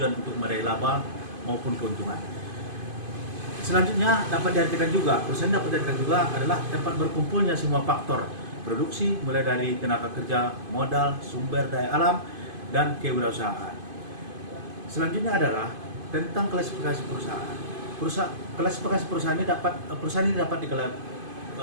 untuk meraih laba maupun keuntungan. Selanjutnya dapat diartikan juga, perusahaan dapat diartikan juga adalah tempat berkumpulnya semua faktor produksi, mulai dari tenaga kerja, modal, sumber daya alam, dan kewirausahaan. Selanjutnya adalah tentang klasifikasi perusahaan. Klasifikasi perusahaan ini dapat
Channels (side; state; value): left; late; 2.5 ms